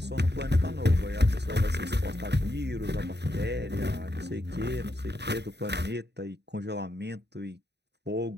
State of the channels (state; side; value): late; left; 0.49 ms